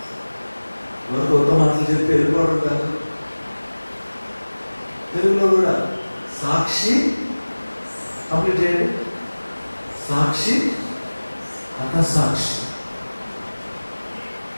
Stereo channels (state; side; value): inverted; both; correlation -1.00